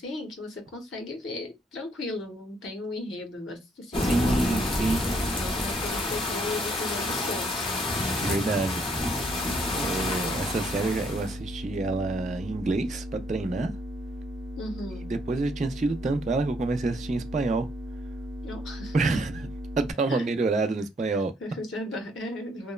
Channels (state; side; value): normal; both; correlation 0.70